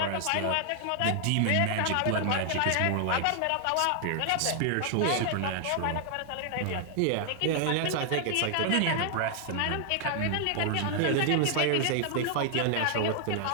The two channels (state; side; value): different; both; correlation 0.00